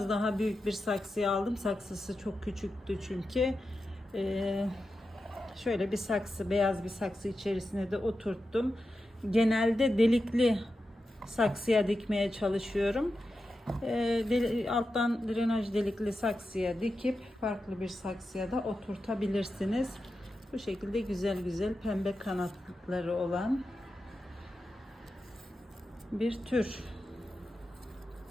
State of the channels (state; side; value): normal; both; correlation 0.90